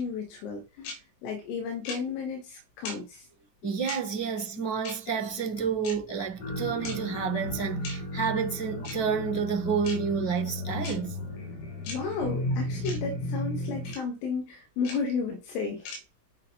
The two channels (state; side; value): late; right; 17 ms